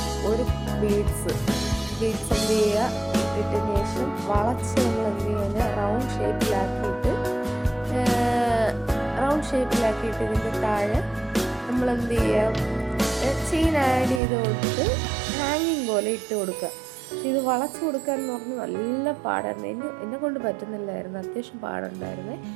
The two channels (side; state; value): left; drops out; at 14.2 s